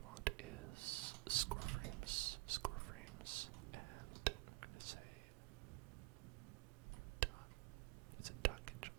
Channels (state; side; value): quieter; left; 23.9 dB